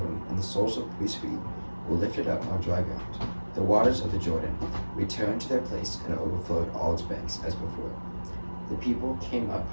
and the soles of the priests' feet were lifted up on dry ground. The waters of the Jordan returned to their place and overflowed all its banks as before. The people came up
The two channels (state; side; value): inverted; both; correlation -1.00